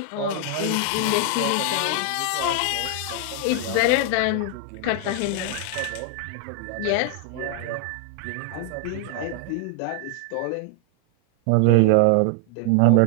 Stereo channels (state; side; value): different; both; correlation 0.00